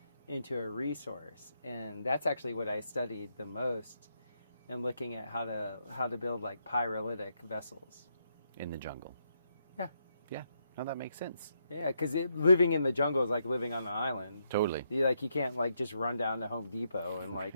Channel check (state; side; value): inverted; both; correlation -0.79